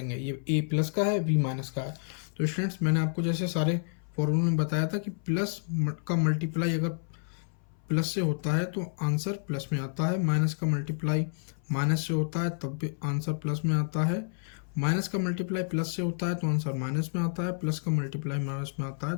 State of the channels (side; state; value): right; silent; 58 dB below the other